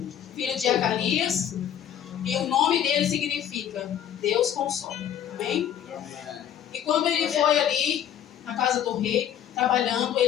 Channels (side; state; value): right; quieter; 10.0 dB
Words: filho de Acalias, e o nome dele significa Deus consola. Amém? E quando ele foi ali na casa do rei, trabalhando,